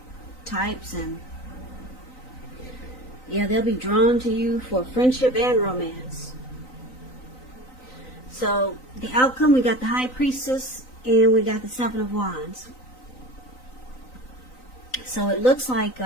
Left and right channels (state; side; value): late; right; 3.9 ms